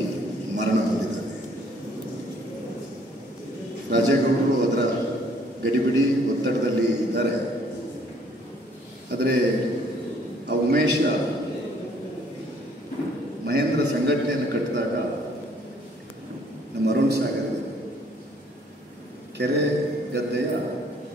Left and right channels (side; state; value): both; normal; correlation 0.61